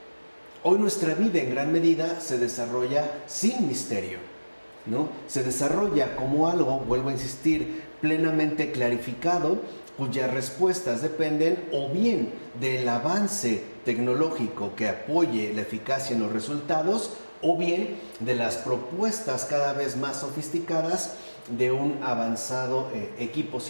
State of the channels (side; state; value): both; inverted; correlation -1.00